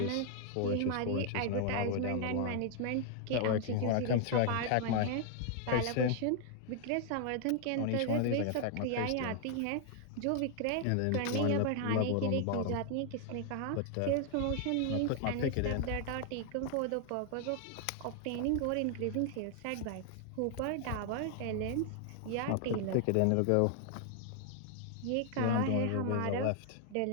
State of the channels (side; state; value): both; different; correlation 0.00